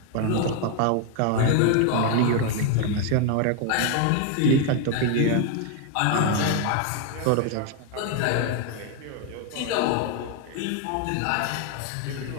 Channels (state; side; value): different; both; correlation 0.01